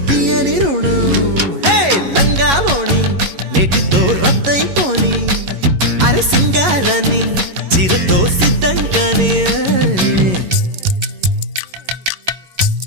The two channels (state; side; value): late; left; 11 ms